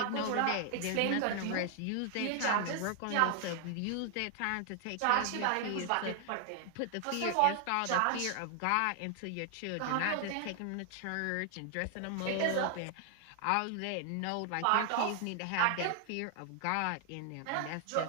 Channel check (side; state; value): both; different; correlation 0.00